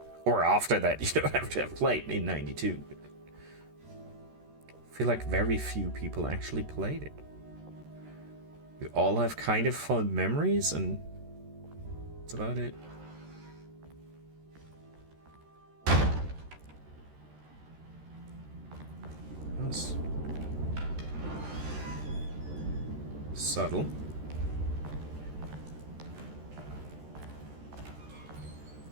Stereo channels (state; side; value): late; left; 13 ms